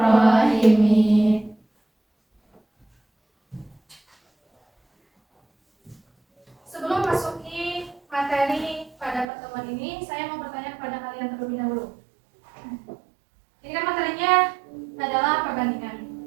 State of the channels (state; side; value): drops out; left; at 9.2 s